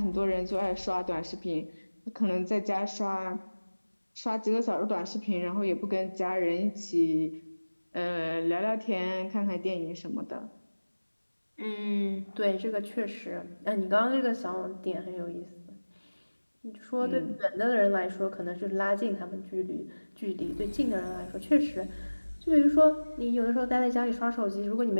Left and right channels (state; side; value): inverted; both; correlation -1.00